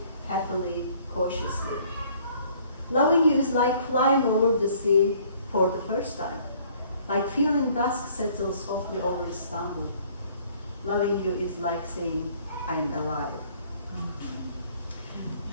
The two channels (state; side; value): inverted; both; correlation -0.58